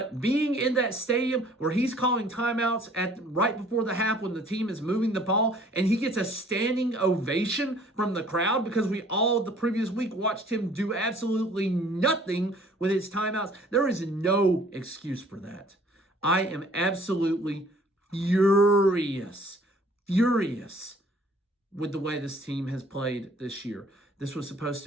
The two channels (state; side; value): normal; both; correlation 0.55